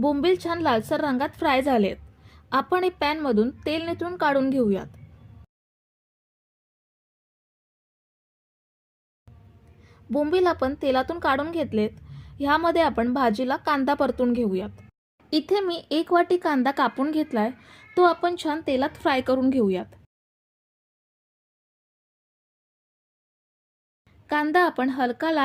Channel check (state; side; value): identical; both; correlation 1.00